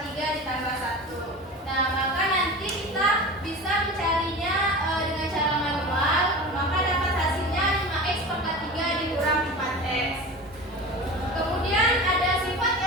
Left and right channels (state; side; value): normal; both; correlation 0.32